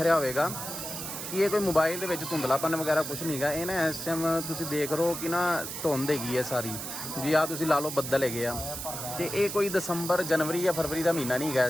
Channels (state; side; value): noise; right; hiss, 7 dB below the sound